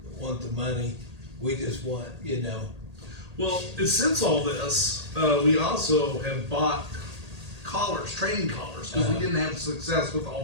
the money, we just want, you know. Well, since all this, we also have bought collars, training collars, because we didn't have success with the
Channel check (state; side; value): late; left; 1.8 ms